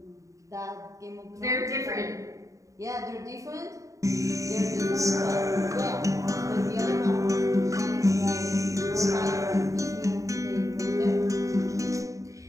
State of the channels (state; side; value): late; left; 0.16 ms